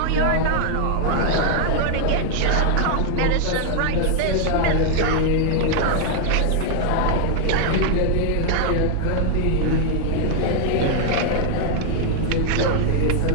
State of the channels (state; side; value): different; both; correlation 0.00